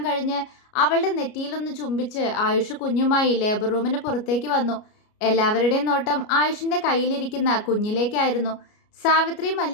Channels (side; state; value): right; late; 33 ms